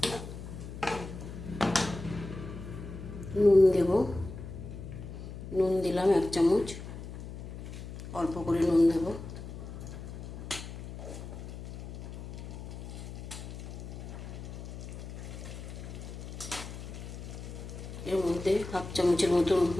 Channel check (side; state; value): left; noise; hum, 10 dB below the sound